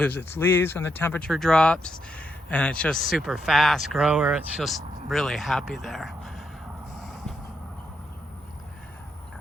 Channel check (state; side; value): normal; both; correlation 0.79